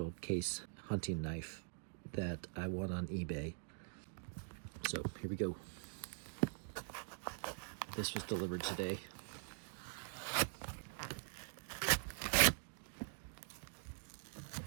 case hunting knife that I won on eBay. So here we go. This was delivered today.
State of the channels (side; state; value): left; silent; digital silence